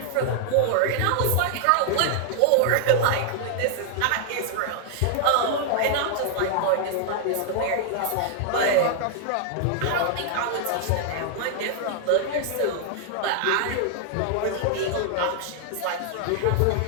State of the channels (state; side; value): different; both; correlation 0.00